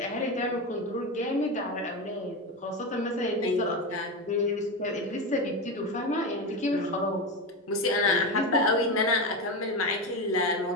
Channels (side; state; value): both; normal; correlation 0.17